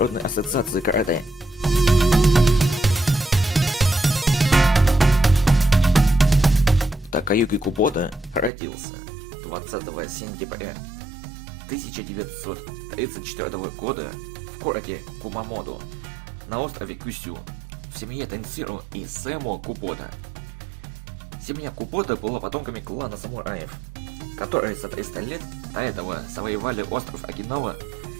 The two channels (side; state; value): left; drops out; at 8.5 s